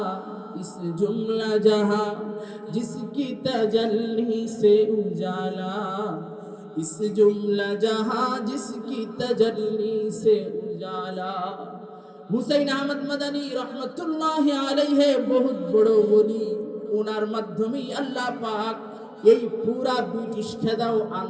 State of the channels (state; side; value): identical; both; correlation 1.00